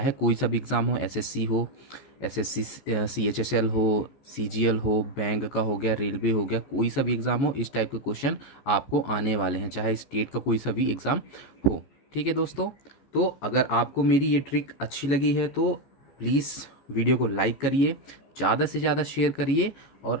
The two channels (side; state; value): right; late; 14 ms